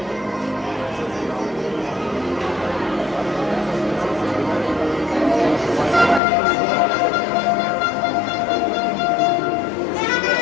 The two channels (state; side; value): drops out; right; at 6.2 s